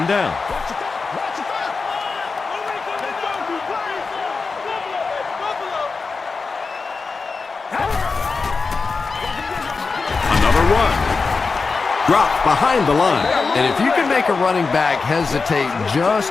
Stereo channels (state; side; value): quieter; right; 4.4 dB